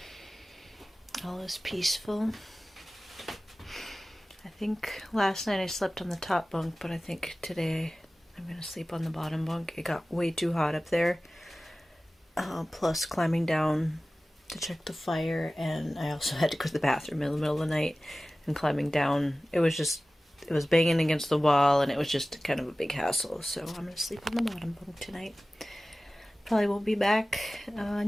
All is peaceful. I think last night I slept on the top bunk, but I think today I'm going to sleep on the bottom bunk. It got way too hot up there. Plus climbing down to check the fire, and I also had to go to the bathroom in the middle of the night, and climbing down, it was banging against the wall, and it was just kind of a big hassle. So I'm going to sleep on the bottom bunk tonight. Probably won't be back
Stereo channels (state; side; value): normal; both; correlation 0.97